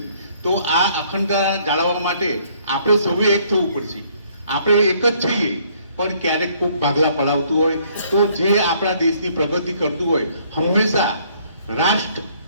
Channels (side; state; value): both; inverted; correlation -0.64